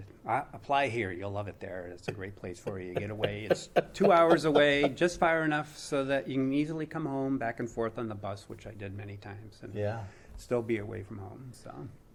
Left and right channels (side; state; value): both; identical; correlation 1.00